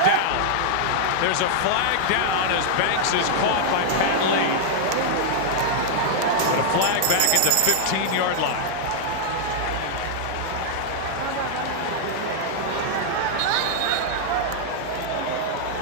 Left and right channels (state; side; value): different; both; correlation -0.01